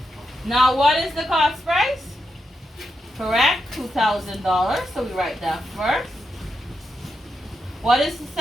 Now what is the cost price? Correct, $2,000. So we write that first. What is the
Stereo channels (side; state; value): both; normal; correlation 0.85